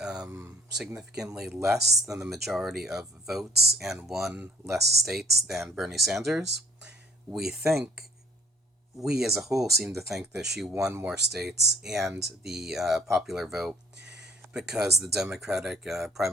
significantly less than the majority of votes and won less states than Bernie Sanders, we think we as a whole seem to think that she won more states and the popular vote because the Democratic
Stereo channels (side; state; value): both; normal; correlation 0.58